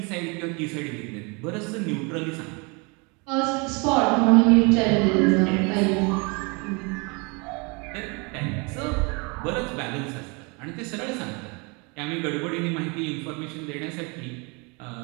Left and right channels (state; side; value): quieter; left; 30.5 dB